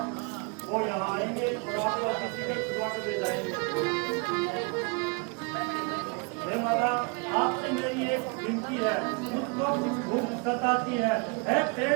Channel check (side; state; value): left; quieter; 32.3 dB